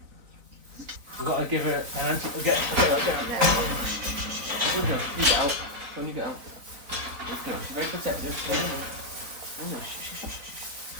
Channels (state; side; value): late; left; 4.0 ms